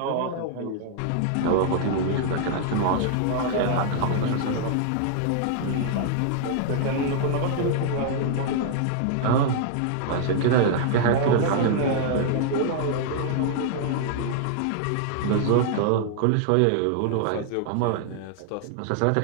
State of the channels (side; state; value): both; different; correlation -0.01